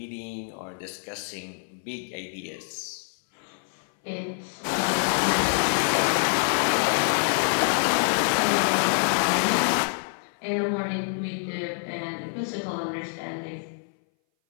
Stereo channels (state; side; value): silent; right; 59 dB below the other